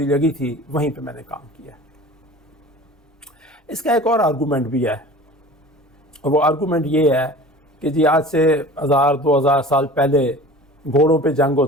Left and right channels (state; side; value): normal; both; correlation 0.41